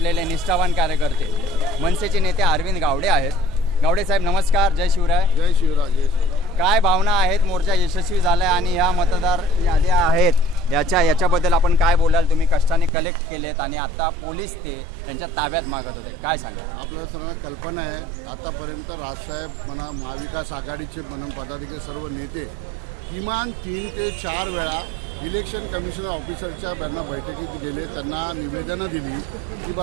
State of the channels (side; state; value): left; drops out; at 12.9 s